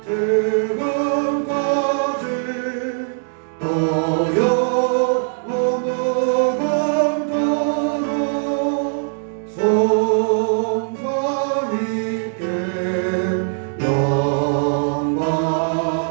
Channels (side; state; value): left; silent; digital silence